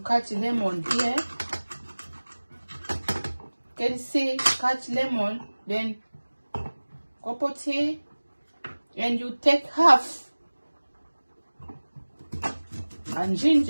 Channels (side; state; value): both; inverted; correlation -1.00